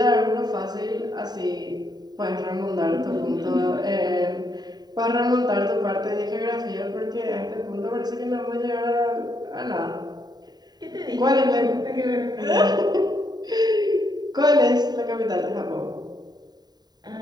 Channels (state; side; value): late; left; 0.20 ms